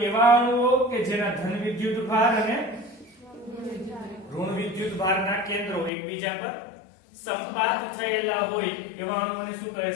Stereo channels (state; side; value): drops out; right; at 5.9 s